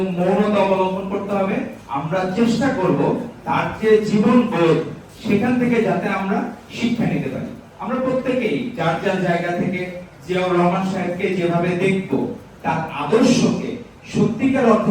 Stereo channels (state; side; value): identical; both; correlation 1.00